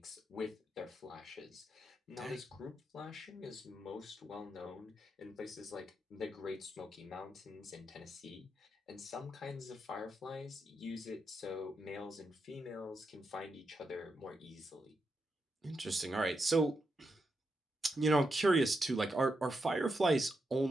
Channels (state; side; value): normal; both; correlation 0.85